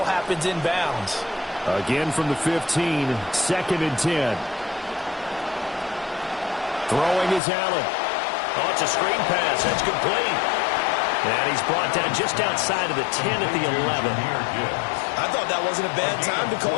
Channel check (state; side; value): drops out; right; at 7.4 s